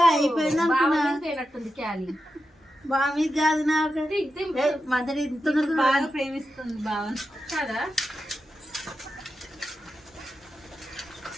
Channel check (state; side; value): normal; both; correlation 0.89